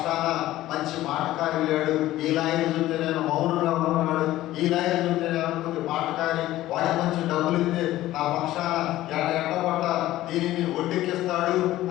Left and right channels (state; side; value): quieter; right; 15.3 dB